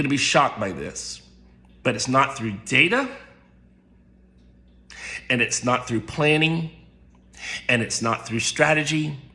be shocked by this, but it's not through data, and it's not through planning, and it's not through strategy,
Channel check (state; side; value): identical; both; correlation 1.00